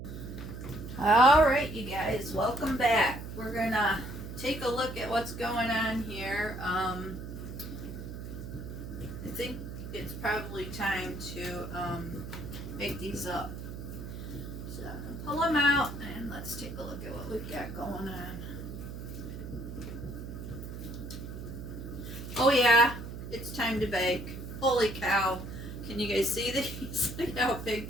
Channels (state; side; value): noise; right; hum, 9 dB below the sound